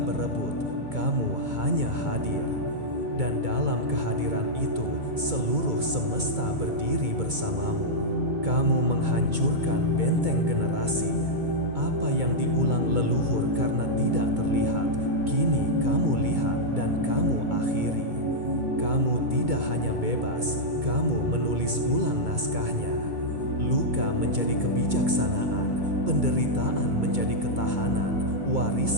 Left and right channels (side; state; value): left; late; 2.2 ms